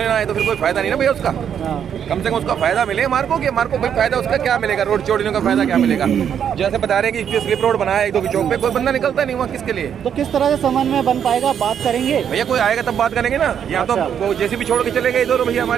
ना आए तो फिर कोई फायदा नहीं ना भैया उसका। हाँ। कम से कम उसका फायदा मिले हमारे को, कि हमारे को कोई फायदा उसका क्या मिलेगा? रोड चौड़ीने का फायदा क्या मिलेगा? जैसे बता रहे हैं कि स्लिप रोड बनाया 1-2 की चौक पे, कोई बंदा निकलता नहीं हुआ, किसके लिए? तो किस तरह से समन्वय बन पाएगा, बात करेंगे? भैया कोई आएगा तब बात करेंगे ना, यहाँ तो अच्छा। वो जैसे भी छोड़ के चले गए इधर भैया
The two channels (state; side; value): quieter; left; 8.5 dB